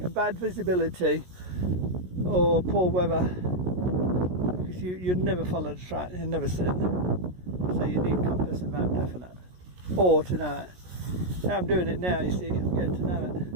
bad visibility or poor weather, because you'd never follow the track, you'd never see it. So you need compass and map definite, or to know it. Now I'm doing it now, you see, I'm getting to know it.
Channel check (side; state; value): left; late; 16 ms